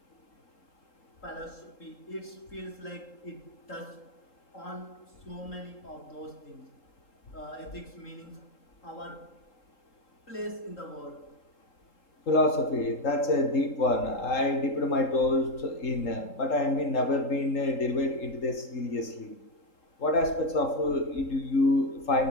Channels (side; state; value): right; late; 3.8 ms